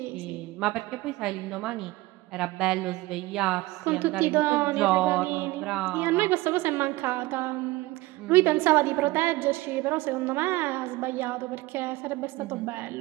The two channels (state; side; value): quieter; left; 19.8 dB